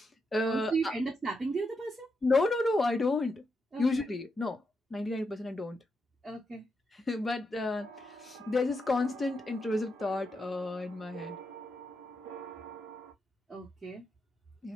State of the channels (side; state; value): both; normal; correlation 0.83